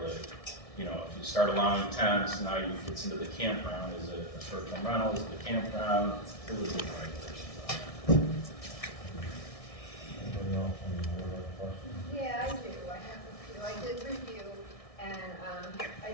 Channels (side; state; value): right; late; 1.6 ms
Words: that, you know, if you start allowing tents, now you get into the campground. Is it a short-term rental? Is it a campground? Really good regulations on that. Anybody else on the board have a question? Yeah, I do. I have a few. I did review, and